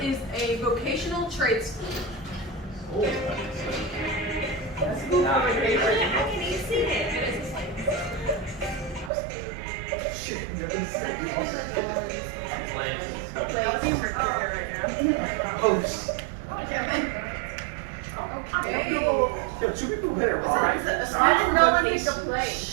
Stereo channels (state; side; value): drops out; left; at 9.1 s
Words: is a vocational trade school? How can you see it? Okay. Yo, two people hit it wrong. I didn't know when you could play.